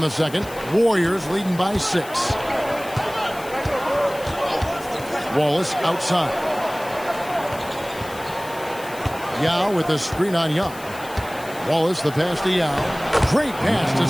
second. Warriors leading by 6. Wallace outside. Yao with the screen on Young. Wallace the pass to Yao. Great pass to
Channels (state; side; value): noise; left; hiss, 18 dB below the sound